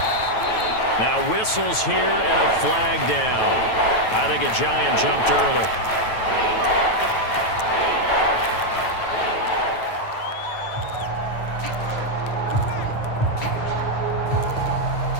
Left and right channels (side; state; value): right; late; 9.2 ms